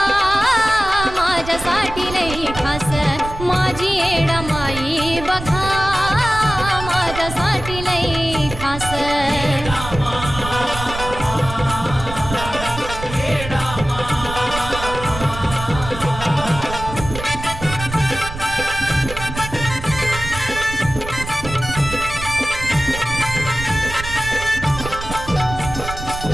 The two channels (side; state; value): right; noise; rumble, 10 dB below the sound